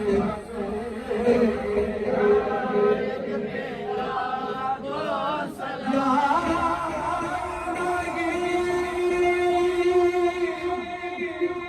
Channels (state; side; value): identical; both; correlation 1.00